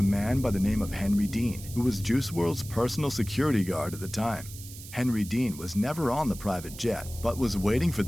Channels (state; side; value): noise; right; hiss, 15 dB below the sound